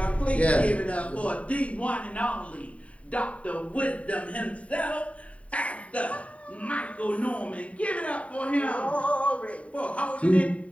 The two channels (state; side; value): late; right; 0.066 ms